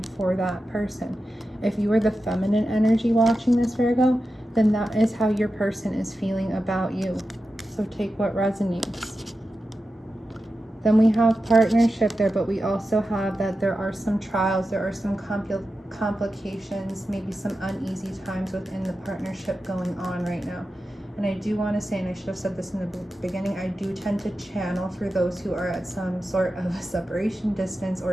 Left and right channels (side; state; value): both; normal; correlation 0.91